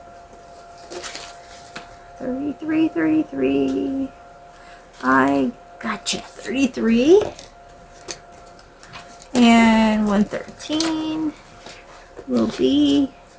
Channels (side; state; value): both; identical; correlation 1.00